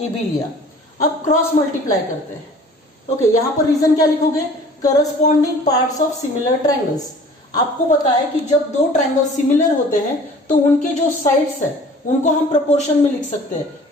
लिया। अब क्रॉस मल्टीप्लाई करते हैं। ओके, यहां पर रीजन क्या लिखोगे, corresponding parts of similar triangles. आपको पता है कि जब दो ट्रायंगल सिमिलर होते हैं तो उनके जो साइड्स है उनको हम प्रोपोर्शन में लिख सकते हैं।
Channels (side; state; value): both; normal; correlation 0.48